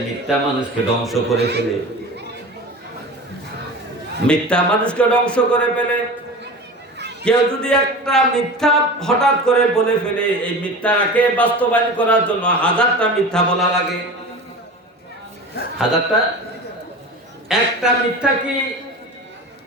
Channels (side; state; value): both; normal; correlation 0.33